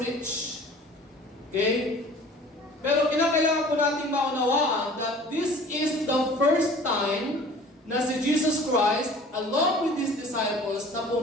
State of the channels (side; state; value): both; normal; correlation 0.46